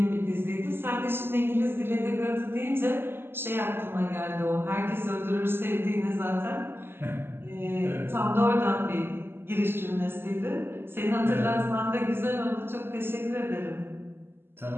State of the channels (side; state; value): left; late; 0.11 ms